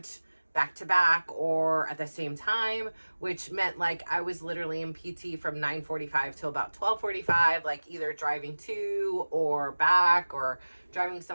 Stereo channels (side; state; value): both; inverted; correlation -1.00